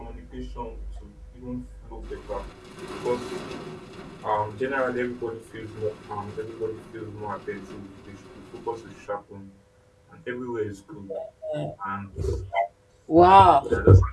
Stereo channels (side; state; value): both; identical; correlation 1.00